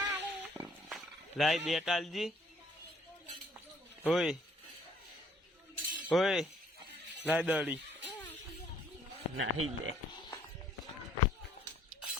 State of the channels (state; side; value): normal; both; correlation 0.62